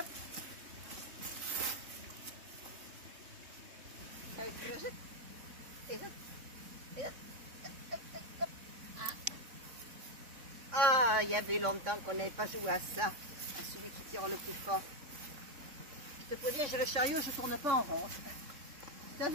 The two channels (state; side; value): late; left; 3.6 ms